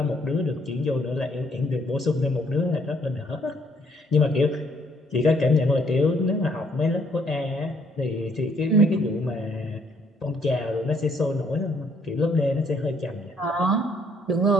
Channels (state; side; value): normal; both; correlation 0.67